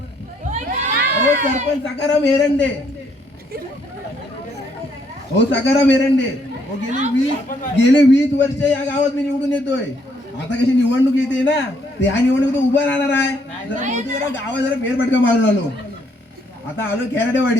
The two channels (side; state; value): both; normal; correlation 0.70